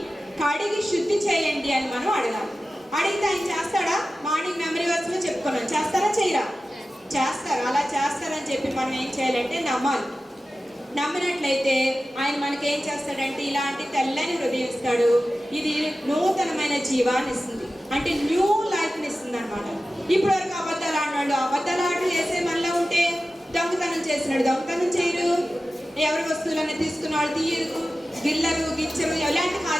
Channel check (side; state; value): both; normal; correlation 0.95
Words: కడిగి శుద్ధి చేయండి అని మనం అడగాలి. అడిగితే ఆయన చేస్తాడా? మార్నింగ్ మెమరీ వర్స్లో చెప్పుకున్నాం. చేస్తారా చేయరా? చేస్తారు. అలా చేస్తారని చెప్పి మనం ఏం చేయాలంటే నమ్మాలి. నమ్మినట్లయితే ఆయన మనకి ఏం చేస్తాడంటే ఇలాంటి తెల్లని హృదయం ఇస్తాడు. ఇది నూతనమైన జీవాన్ని ఇస్తుంది, అంటే న్యూ లైఫ్ని ఇస్తుంది అనమాట. ఇప్పటి వరకు అబద్ధాలు ఆడినాడు, అబద్ధాలు ఆటలు వేసే మనలో ఉంటే దొంగతనం చేసినాడు, దొంగతనం చేయరు, ఎవరి వస్తువులన్నీ తీసుకున్న వాళ్ళు తీయరు, గిల్లరు గిచ్చరు, ఎలాంటి